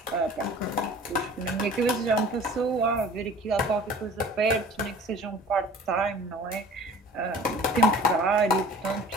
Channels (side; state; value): both; normal; correlation 0.46